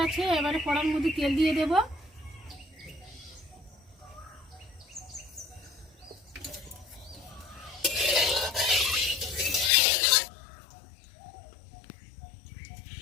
এবারে কড়ার মধ্যে তেল দিয়ে দেব।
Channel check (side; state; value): right; drops out; at 9.7 s